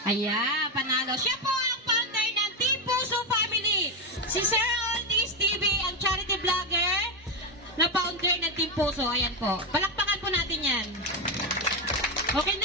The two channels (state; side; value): normal; both; correlation 0.09